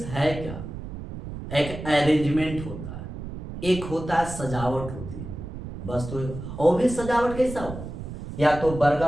है क्या, एक अरेंजमेंट होता है, एक होता है सजावट होती है, बस। तो और भी सजावट कैसा हो, या तो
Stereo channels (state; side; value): noise; right; rumble, 9 dB below the sound